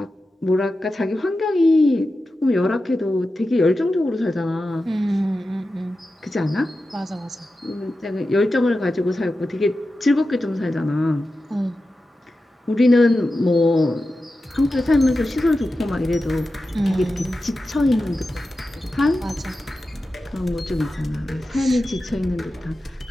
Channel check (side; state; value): both; normal; correlation 0.92